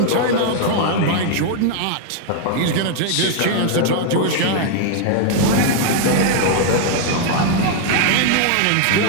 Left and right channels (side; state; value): both; different; correlation 0.00